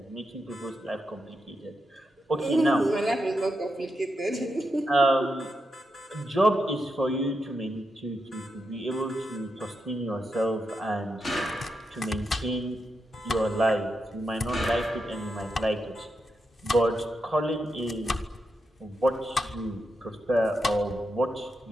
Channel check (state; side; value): normal; both; correlation 0.85